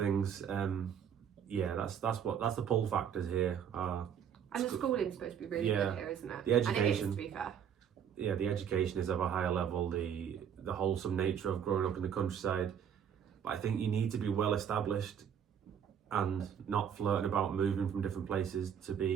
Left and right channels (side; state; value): left; quieter; 8.3 dB